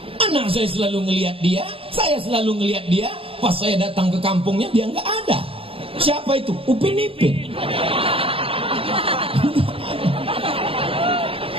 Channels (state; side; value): late; left; 0.27 ms